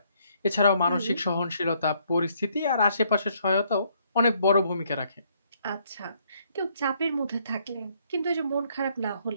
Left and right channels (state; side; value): inverted; both; correlation -0.69